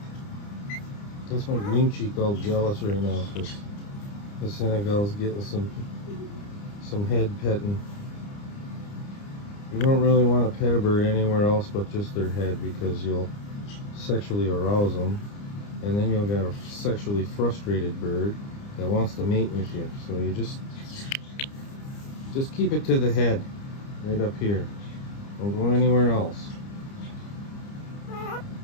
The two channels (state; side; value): late; right; 30 ms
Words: That's my green cheek all jealous right now because the Senegal's getting some head petting. You don't really want to pet a bird anywhere else but just their head because you'll sexually arouse them, and then you'll get a sexually frustrated bird that wants to mate with you. So you just keep it to the head, right up here. Don't go anywhere else.